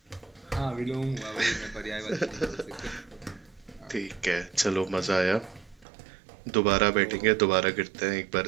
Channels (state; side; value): drops out; left; at 5.9 s